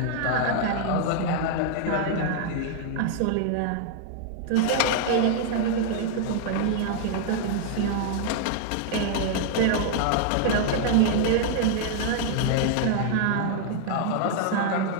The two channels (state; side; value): different; both; correlation 0.00